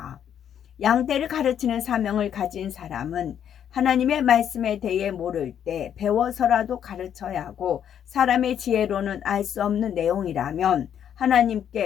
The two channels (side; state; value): right; quieter; 9.2 dB